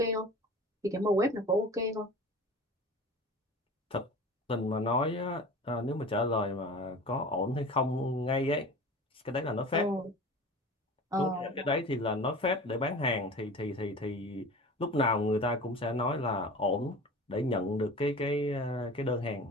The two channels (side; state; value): both; normal; correlation 0.38